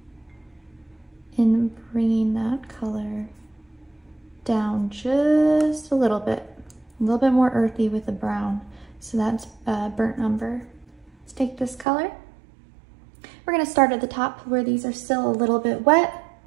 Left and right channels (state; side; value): drops out; left; at 11.9 s